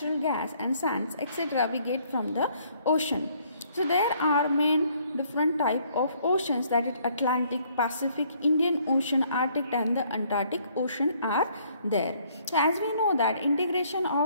gas and sands, etc. we get from the ocean. So there are main different type of oceans, that is Atlantic, Pacific, Indian Ocean, Arctic and the Antarctic Ocean are there. So as we know that integration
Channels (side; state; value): both; inverted; correlation -0.65